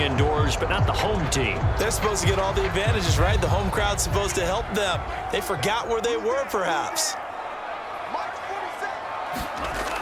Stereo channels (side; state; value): both; identical; correlation 1.00